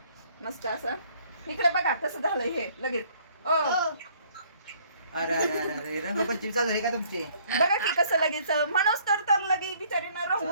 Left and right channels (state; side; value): inverted; both; correlation -0.61